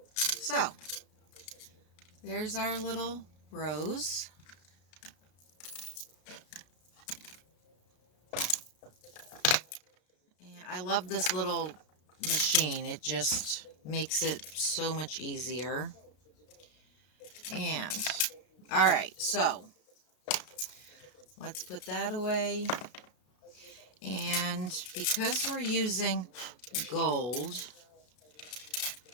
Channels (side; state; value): right; late; 33 ms